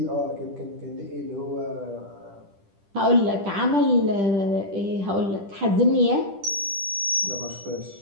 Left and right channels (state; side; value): late; left; 10 ms